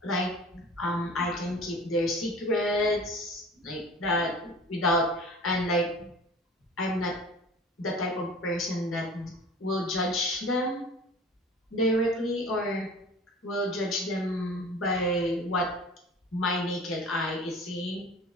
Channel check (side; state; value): both; normal; correlation 0.42